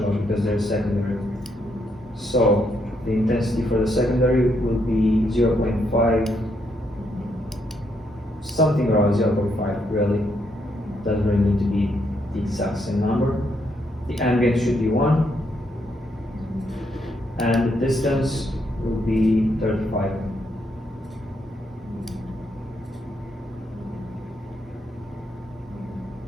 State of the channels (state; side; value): normal; both; correlation 0.76